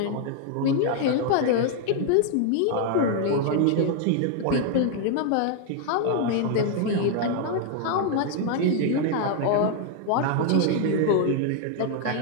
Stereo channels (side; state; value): both; different; correlation 0.00